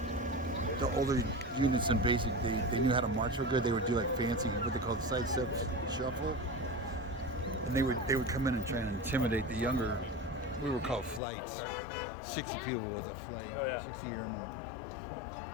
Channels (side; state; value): right; drops out; at 11.2 s